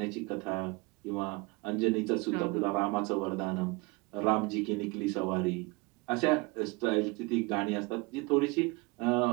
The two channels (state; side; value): quieter; left; 25.8 dB